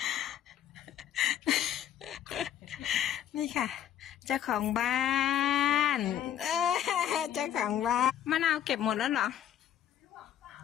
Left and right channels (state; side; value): quieter; right; 10.4 dB